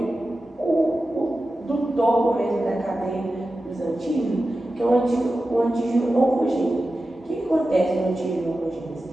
do topo mesmo da cadeia dos antígenos, que é o antígeno oncogênico. O que acontece no antígeno oncogênico?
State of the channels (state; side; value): normal; both; correlation 0.93